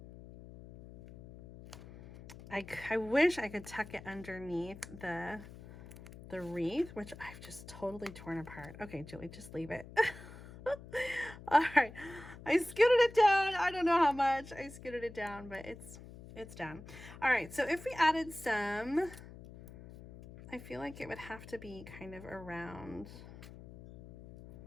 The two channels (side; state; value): left; noise; hum, 16 dB below the sound